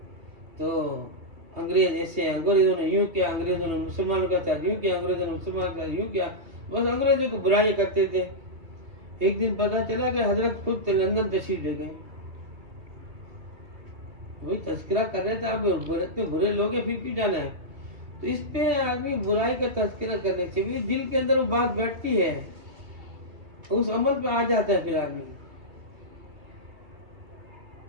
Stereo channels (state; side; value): late; left; 2.5 ms